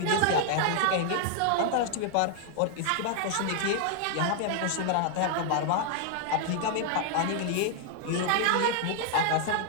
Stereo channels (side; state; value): both; different; correlation 0.00